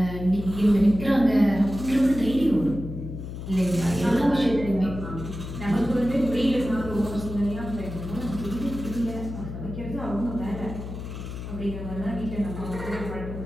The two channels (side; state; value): left; noise; hum, 8 dB below the sound